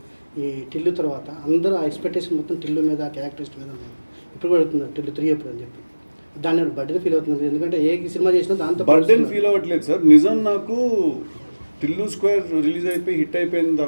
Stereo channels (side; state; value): both; inverted; correlation -1.00